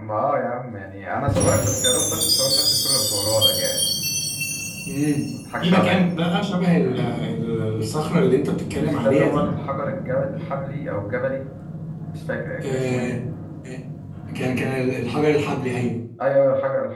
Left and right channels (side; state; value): both; identical; correlation 1.00